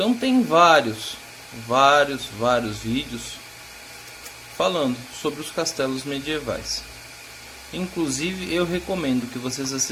tem vários vídeos falando sobre os castelos medievais. Inclusive eu recomendo que vocês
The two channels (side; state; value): both; identical; correlation 1.00